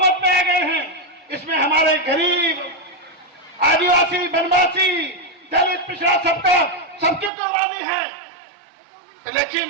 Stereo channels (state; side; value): drops out; left; at 7.3 s